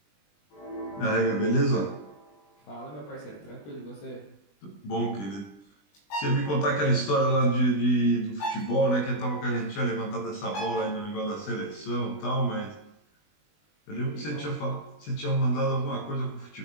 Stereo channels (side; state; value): right; late; 20 ms